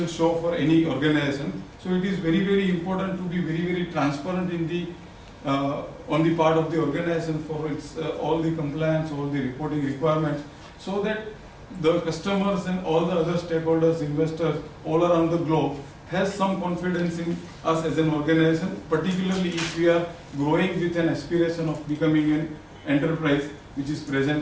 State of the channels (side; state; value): both; identical; correlation 1.00